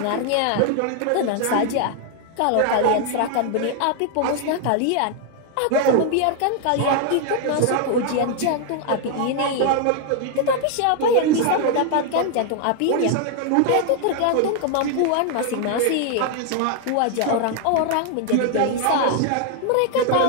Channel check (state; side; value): different; both; correlation 0.00